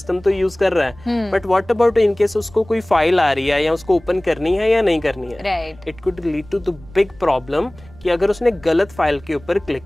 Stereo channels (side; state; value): right; noise; rumble, 22 dB below the sound